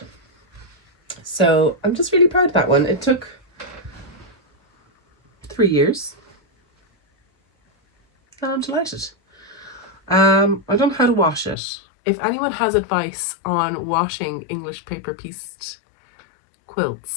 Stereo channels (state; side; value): drops out; right; at 11.6 s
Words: So I'm just really proud of that one. It took 3 years. And I'm delighted. I don't know how to wash it. If anyone has advice on washing English paper pieced